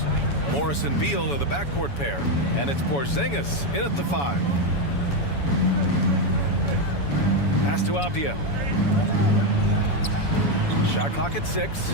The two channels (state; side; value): late; right; 7.1 ms